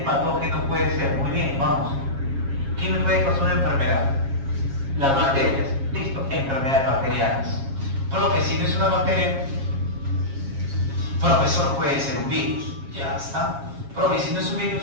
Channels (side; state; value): left; late; 7.3 ms